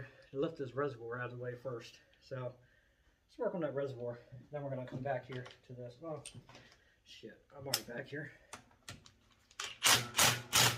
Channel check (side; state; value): both; identical; correlation 1.00